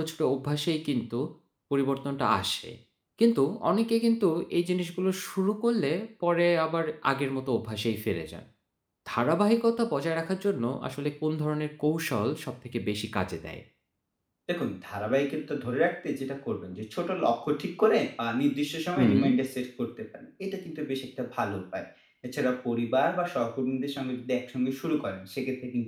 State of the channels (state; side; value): identical; both; correlation 1.00